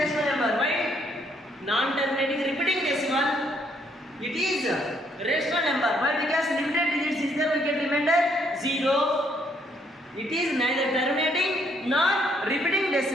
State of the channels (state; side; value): normal; both; correlation 0.70